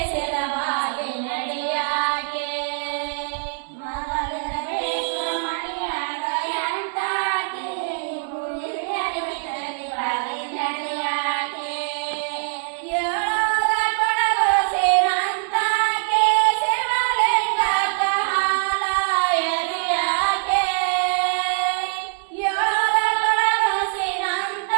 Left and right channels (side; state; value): left; silent; 63 dB below the other